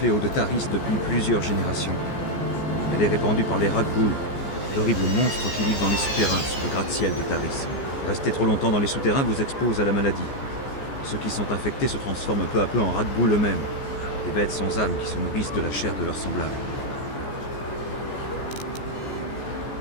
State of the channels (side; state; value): right; late; 14 ms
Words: de Taris depuis plusieurs générations. Elle est répandue par les Rakghoul, d'horribles monstres qui vivent dans les souterrains sous le gratte-ciel de Taris. Rester trop longtemps dans les souterrains vous expose à la maladie. Ceux qui sont infectés se transforment peu à peu en Rakghoul eux-mêmes, des bêtes sans âme qui se nourrissent de la chair de leurs semblables.